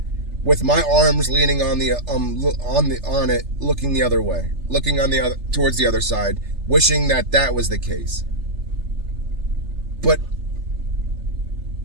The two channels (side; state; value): left; late; 3.3 ms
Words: with my arms leaning on it, looking the other way, looking towards the other side, wishing that was the case. But